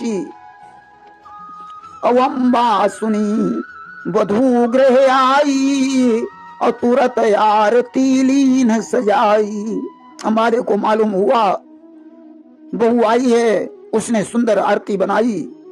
अवंबा सुनी वधू गृह आई, और तुरंत आरती लीन सजाई। हमारे को मालूम हुआ बहू आई है, उसने सुंदर आरती बनाई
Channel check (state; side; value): identical; both; correlation 1.00